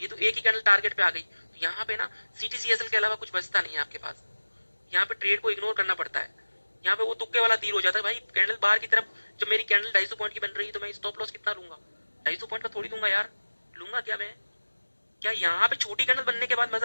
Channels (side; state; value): both; inverted; correlation -1.00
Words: तो एक ही कैंडल टारगेट पे आ गई। तो यहाँ पे ना सीटीसीएसएल के अलावा कुछ बचता नहीं है आपके पास। यहाँ पे ट्रेड को इग्नोर करना पड़ता है। यहाँ पे वो तुक्के वाला तीर हो जाता है भाई। कैंडल बाहर की तरफ, जब मेरी कैंडल 250 पॉइंट की बन रही है तो मैं स्टॉप लॉस कितना लूंगा? 250 पॉइंट का थोड़ी लूंगा यार। लूंगा क्या मैं? क्या यहाँ पे छोटी कैंडल बनने के बाद